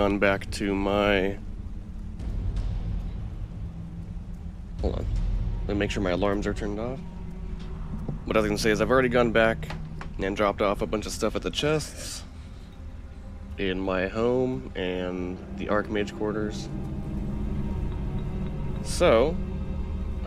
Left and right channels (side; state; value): both; identical; correlation 1.00